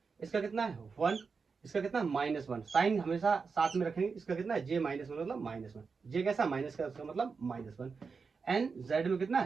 इसका कितना है 1, इसका कितना है -1। साइन हमेशा साथ में रखेंगे। इसका कितना है जे -1 मतलब -1, जे कैसा माइनस का, उसका मतलब -1, एंड जेड में कितना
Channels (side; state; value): left; quieter; 5.1 dB